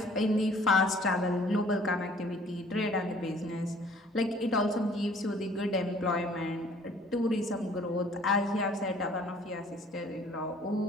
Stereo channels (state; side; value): normal; both; correlation 0.55